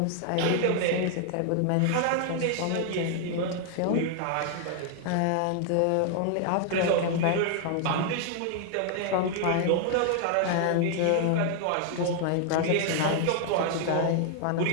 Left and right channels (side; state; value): both; different; correlation 0.00